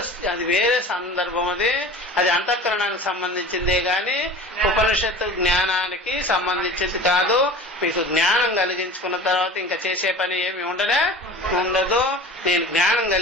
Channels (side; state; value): both; normal; correlation 0.38